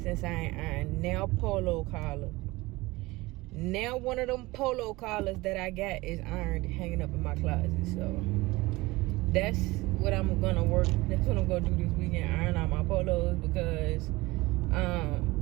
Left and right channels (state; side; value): quieter; left; 21.2 dB